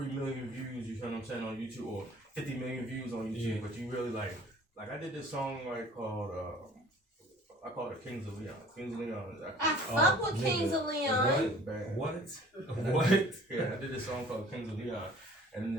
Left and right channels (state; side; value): normal; both; correlation 0.50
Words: million views, you feel what I'm saying, on YouTube, or 50 million views on YouTube. Yeah. But you really like I did this song called I call it Kings of Leon. Kings of Leon is actually I fuck with Kings of Leon. What? Yeah, I did this song called Kings of Leon. And in